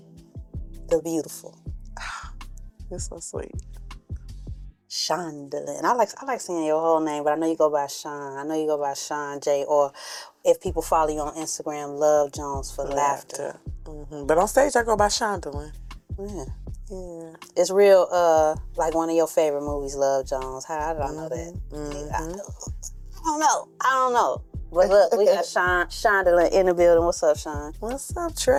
the beautiful. You're so sweet. Shondolyn. I like saying your whole name, but I know you go by Shon. I know you go by Shon J, or if people follow you on Instagram, Love Jones for laughter. Mm-hmm. But on stage, I go by Shondolyn. Yeah. It's real, like one of your favorite movies, Love Jones. How did I know that? Mm-hmm. I don't know. But look, we got Shondolyn in the building. What's up, Shon? What's up,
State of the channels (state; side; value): identical; both; correlation 1.00